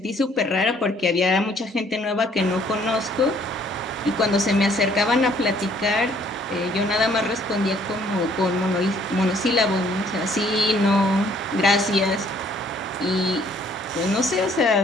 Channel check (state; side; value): normal; both; correlation 0.62